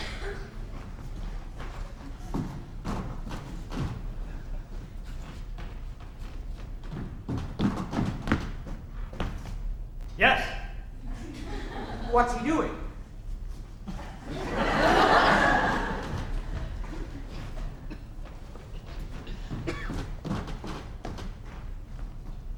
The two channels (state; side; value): identical; both; correlation 1.00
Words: Yes. What's he doing?